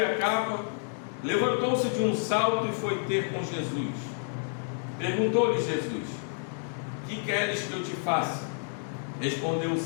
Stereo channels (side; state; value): right; silent; digital silence